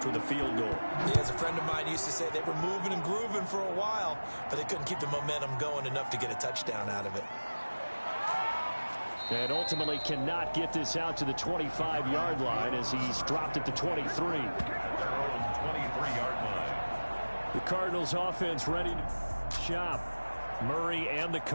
with a field goal. Yeah, as a friend of mine used to say, they were moving and grooving for a while, but they couldn't keep the momentum going enough to get a touchdown out of it. And ultimately cannot get this out to the 25-yard line as he's dropped at the 23. Their own 23-yard line. The Cardinals offense ready to shop. Murray and the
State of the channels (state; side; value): inverted; both; correlation -1.00